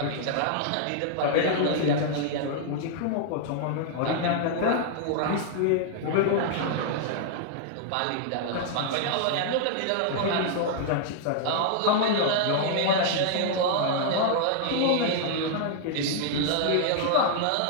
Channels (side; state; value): both; different; correlation -0.01